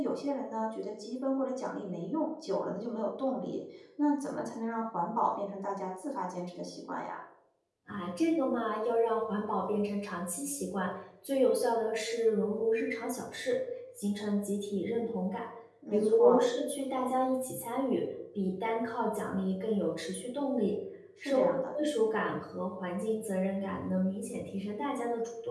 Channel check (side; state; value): both; identical; correlation 1.00